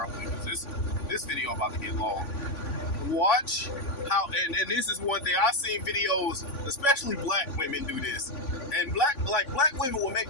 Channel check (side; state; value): right; late; 3.5 ms